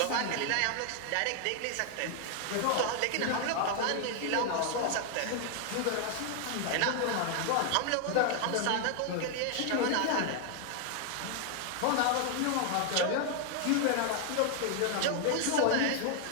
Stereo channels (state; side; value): different; both; correlation 0.00